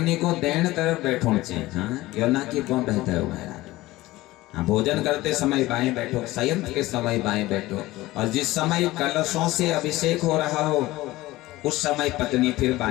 को दैन तरफ बैठो चाहिए। हाँ, यो ना कि कौन रहता है महाराज। हाँ, भोजन करते समय बाएं बैठो, शयन के समय बाएं बैठो, और जिस समय कलशों से अभिषेक हो रहा हो उस समय पत्नी फिर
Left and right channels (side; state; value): right; quieter; 18.2 dB